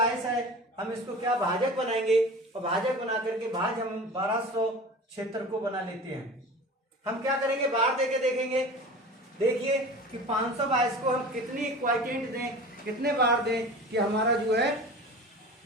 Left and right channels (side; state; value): both; normal; correlation 0.36